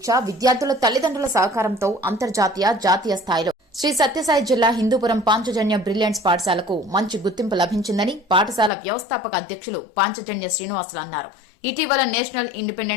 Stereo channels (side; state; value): right; drops out; at 8.7 s